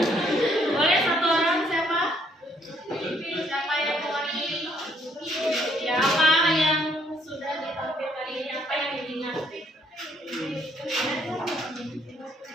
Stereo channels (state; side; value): normal; both; correlation 0.68